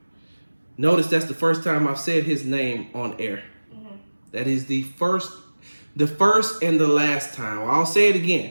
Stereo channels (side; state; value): both; inverted; correlation -1.00